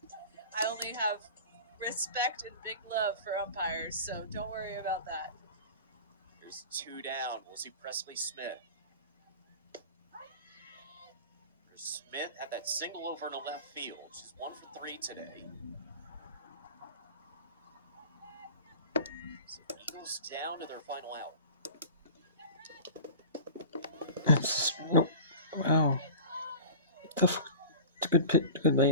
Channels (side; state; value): both; inverted; correlation -0.36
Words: I only have respect and big love for umpires, so don't worry about that. There's 2 down. We'll see Presley Smith. Smith had that single over to left field. She's 1 for 3 today. So Eagles down to their final out. That's nope. Wow. Tough. It's a good pit. Good